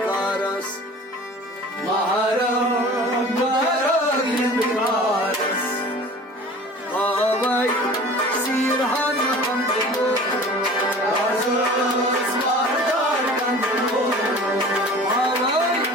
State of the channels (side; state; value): both; normal; correlation 0.42